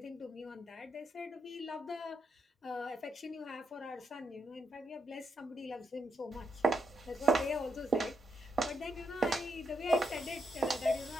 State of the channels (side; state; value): both; normal; correlation 0.80